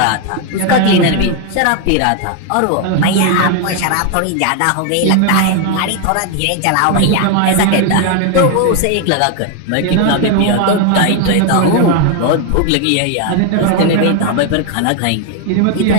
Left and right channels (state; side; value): different; both; correlation 0.01